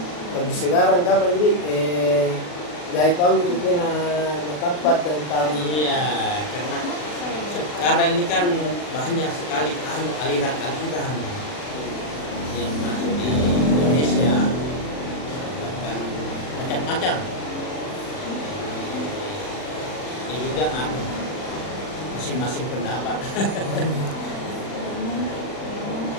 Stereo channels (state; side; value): late; right; 40 ms